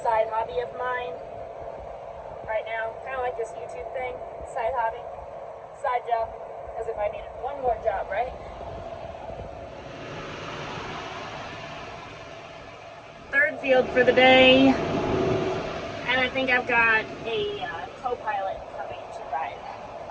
hobby of mine right now, kind of like this YouTube thing, side hobby, side job, as if I needed one more job, right? Third field for the day, and I think I've got a co-pilot coming to ride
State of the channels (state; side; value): identical; both; correlation 1.00